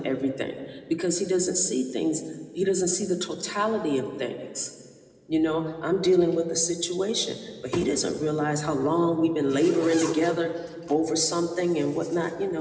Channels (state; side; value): identical; both; correlation 1.00